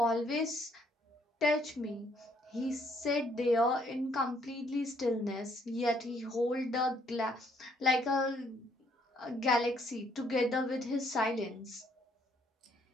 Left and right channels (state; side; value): normal; both; correlation 0.68